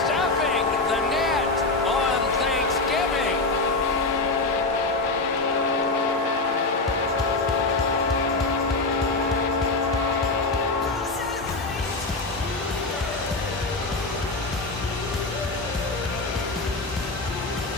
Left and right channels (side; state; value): right; quieter; 3.4 dB